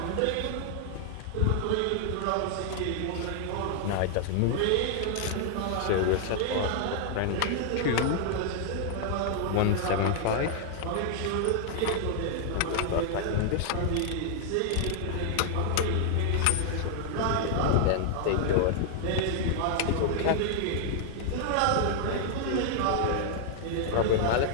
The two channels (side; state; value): both; different; correlation -0.01